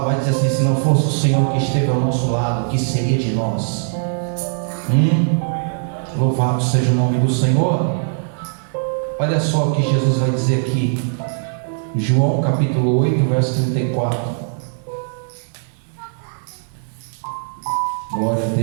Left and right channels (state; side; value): silent; left; digital silence